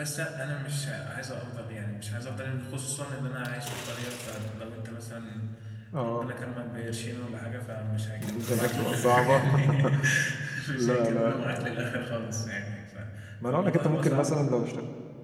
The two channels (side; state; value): both; identical; correlation 1.00